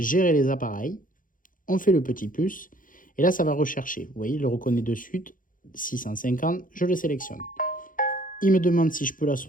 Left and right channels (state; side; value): late; right; 0.39 ms